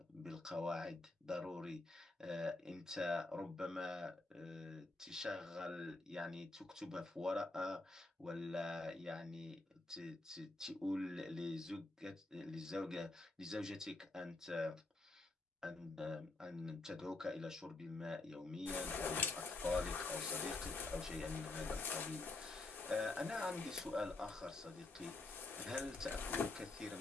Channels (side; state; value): right; quieter; 3.1 dB